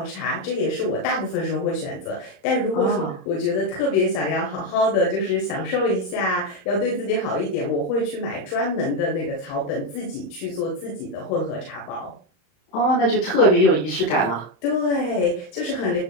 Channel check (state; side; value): late; right; 35 ms